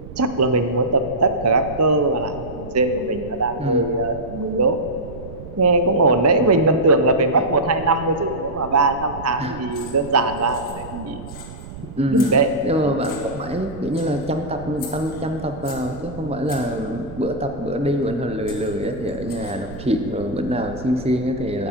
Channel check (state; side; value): noise; right; rumble, 14 dB below the sound